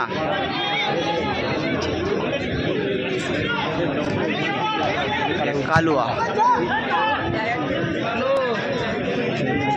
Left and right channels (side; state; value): both; identical; correlation 1.00